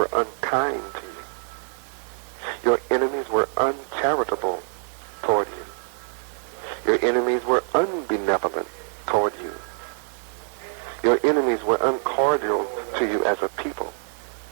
unkind to you. Your enemies were uncharitable toward you. Your enemies were unbenevolent toward you. Your enemies were uncordial to you as a people.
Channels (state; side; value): silent; left; 62 dB below the other